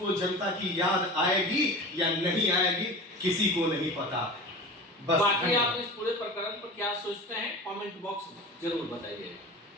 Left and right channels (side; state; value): both; normal; correlation 0.33